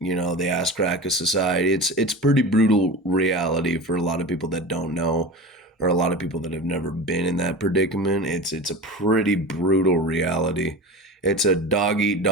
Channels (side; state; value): both; normal; correlation 0.31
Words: ass crack of society. It's pretty brutal reality for a lot of people that don't know, or a lot of people that have never been in that predicament. It's a pretty brutal reality. It's a dog eat